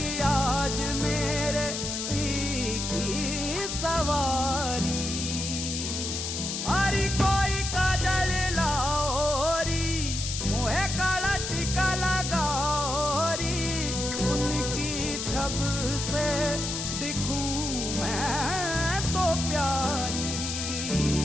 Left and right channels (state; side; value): noise; left; hiss, 4 dB below the sound